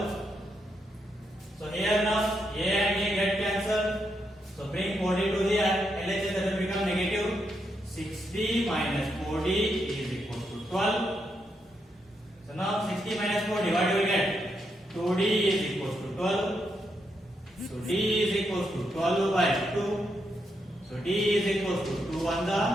So here now A and A get cancelled. So bring 4D to the LHS, that will become negative. 60 minus 4D is equal to 12. So now 60 minus 4D, what do we get? 2D is equal to 12. So D is equal to 12 by 2. So D is equal to 2 on the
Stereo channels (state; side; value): normal; both; correlation 0.81